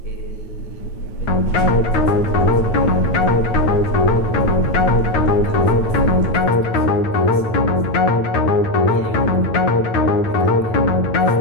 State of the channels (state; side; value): late; right; 9.1 ms